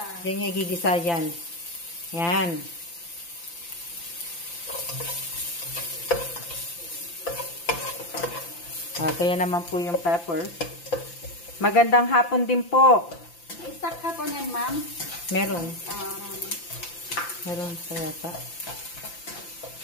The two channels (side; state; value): right; late; 5.9 ms